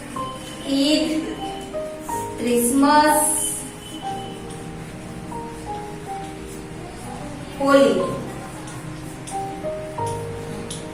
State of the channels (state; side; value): identical; both; correlation 1.00